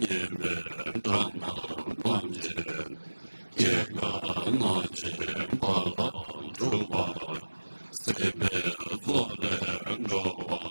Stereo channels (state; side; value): inverted; both; correlation -1.00